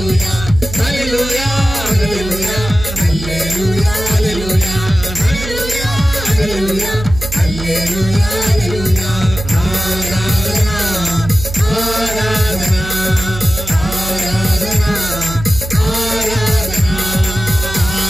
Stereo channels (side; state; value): right; noise; hum, 9 dB below the sound